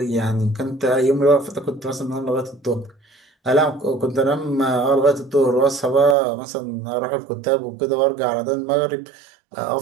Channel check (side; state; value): left; drops out; at 6.2 s